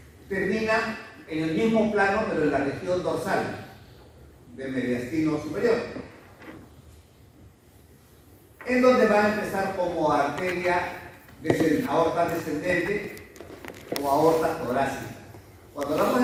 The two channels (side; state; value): both; identical; correlation 1.00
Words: termina en el mismo plano, pero en la región dorsal del mediastino superior, en donde va a empezar como arteria aorta descendente o aorta torácica. Cuando hablamos